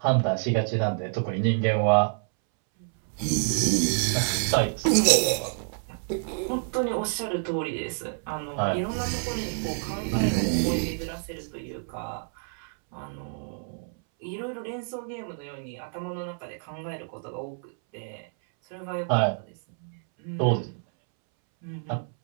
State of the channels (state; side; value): silent; left; 60 dB below the other